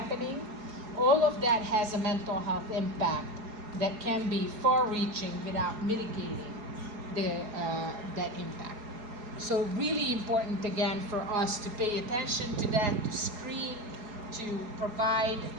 All of that has a mental health impact that can be far-reaching without mitigating that impact. So really important again for us to pay attention to that, to screen, to provide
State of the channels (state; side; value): late; left; 4.8 ms